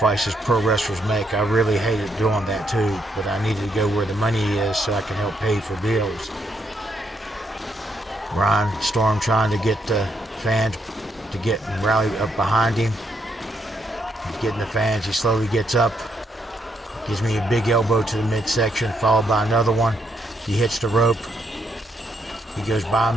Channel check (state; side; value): normal; both; correlation 0.76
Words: pro wrestlers make, I really hated doing that too, but I needed to go where the money is so I can help pay for bills. Ryan Storm trying to get the fans to get and rally up behind him. He's getting the fans, he slowly gets up. Gives me a big elbow to the midsection, followed by another one. He hits the rope. He goes by